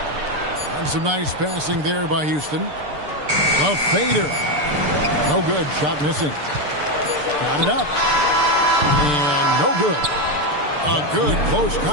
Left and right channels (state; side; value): late; left; 6.8 ms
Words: some nice passing there by Houston. A fader. No good. Shot missing. Got it up. And no good. A good close